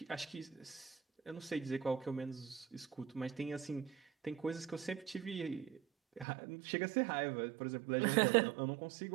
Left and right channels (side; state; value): left; drops out; at 6.2 s